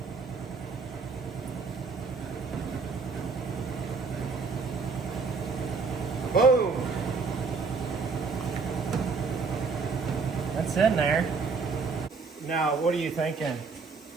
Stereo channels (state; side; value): quieter; left; 4.7 dB